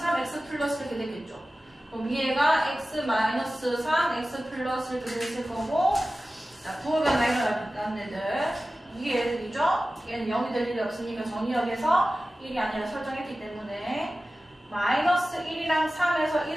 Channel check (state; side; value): normal; both; correlation 0.95